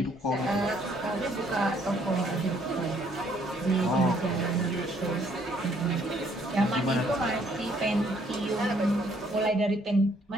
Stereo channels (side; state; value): both; normal; correlation 0.65